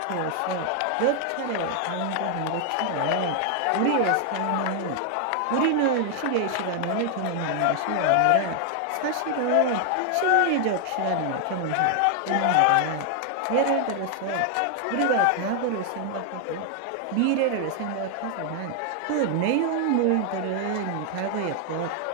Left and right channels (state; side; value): different; both; correlation 0.00